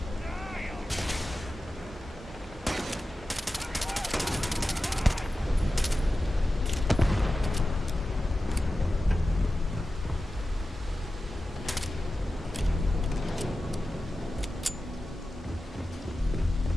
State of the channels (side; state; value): both; normal; correlation 0.94